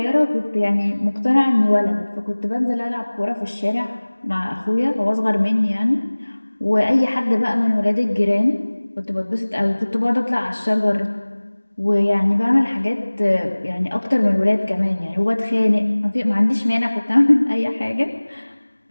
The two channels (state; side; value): inverted; both; correlation -1.00